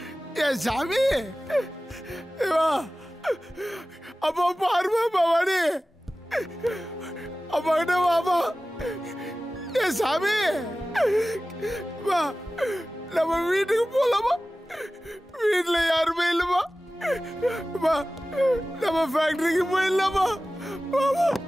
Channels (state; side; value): normal; both; correlation 0.96